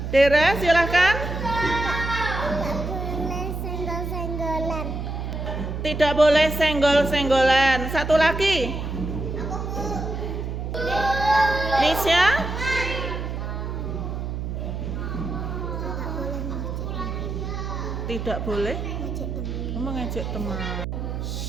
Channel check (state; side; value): noise; right; hum, 4 dB below the sound